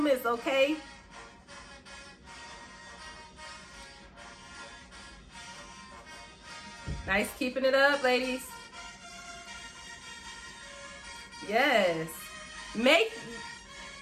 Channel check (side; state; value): both; identical; correlation 1.00